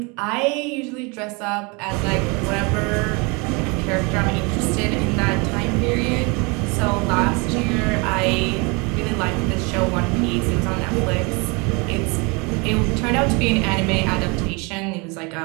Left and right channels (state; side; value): quieter; left; 29.5 dB